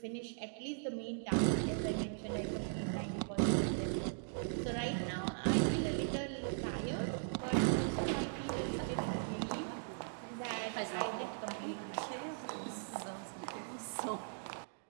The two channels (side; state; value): left; silent; digital silence